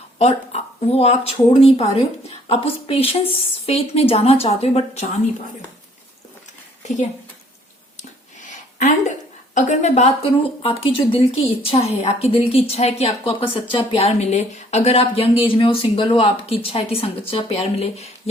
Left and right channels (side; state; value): both; normal; correlation 0.60